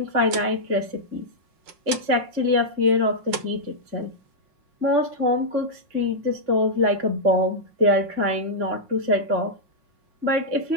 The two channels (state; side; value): late; left; 5.6 ms